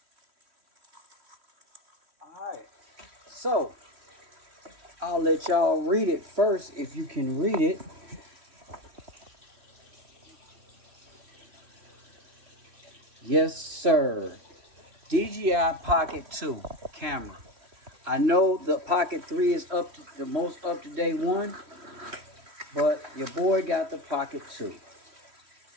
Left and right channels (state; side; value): late; left; 3.1 ms